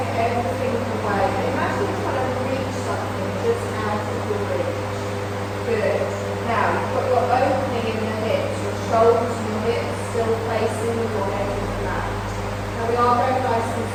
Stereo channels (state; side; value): identical; both; correlation 1.00